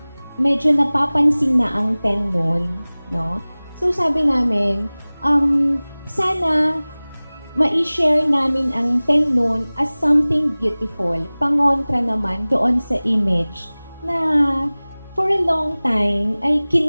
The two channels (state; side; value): inverted; both; correlation -0.99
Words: medyo napapansin na ang Ten Moon, no? So, sabi namin, sana ma-share namin ang Ten Moon as something beautiful. Pangontra naman doon sa image na for a long time ay